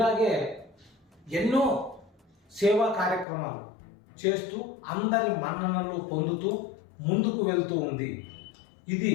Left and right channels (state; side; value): drops out; right; at 3.2 s